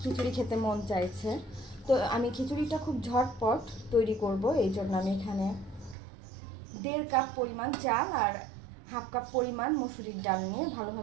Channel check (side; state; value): left; drops out; at 6.0 s